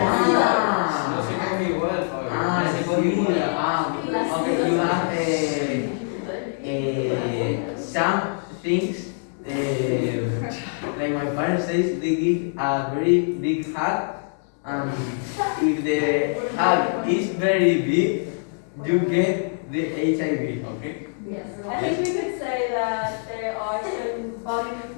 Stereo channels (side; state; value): right; silent; digital silence